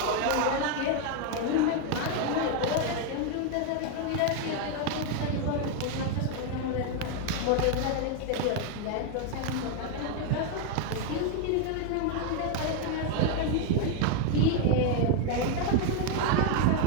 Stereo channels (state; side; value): different; both; correlation 0.01